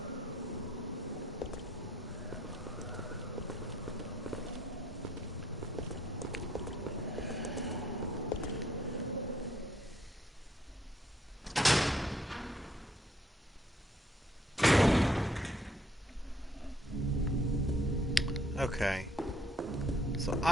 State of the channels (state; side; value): normal; both; correlation 0.67